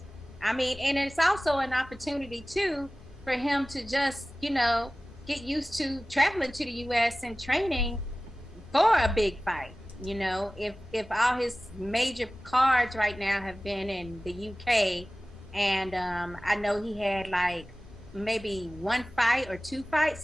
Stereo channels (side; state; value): both; normal; correlation 0.97